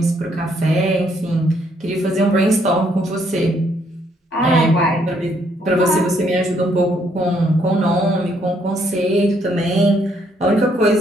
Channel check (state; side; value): normal; both; correlation 0.70